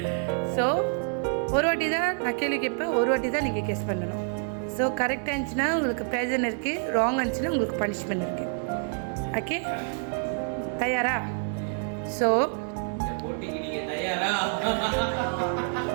ஸோ ஒரு வாட்டி தான் நான் கேள்வி கேட்பேன், ஒரு வாட்டி தான் நீங்கள் கெஸ் பண்ணணும். ஸோ கரெக்டாக இருந்துச்சுன்னா உங்களுக்கு ப்ரெசன்ட் இருக்குது, ராங் இருந்துச்சுன்னா உங்களுக்கு பனிஷ்மெண்ட் இருக்குது. ஓகே, தயாரா? ஸோ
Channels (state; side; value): silent; left; 57 dB below the other